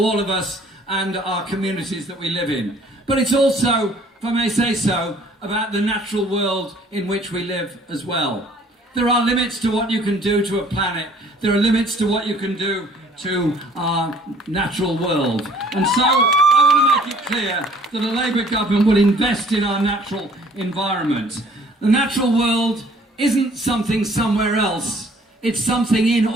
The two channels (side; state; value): both; normal; correlation 0.56